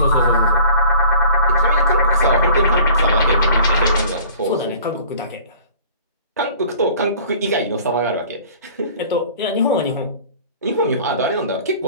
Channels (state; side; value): inverted; both; correlation -0.48